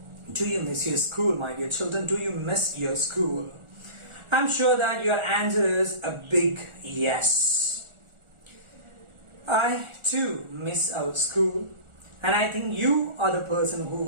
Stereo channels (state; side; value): late; left; 1.4 ms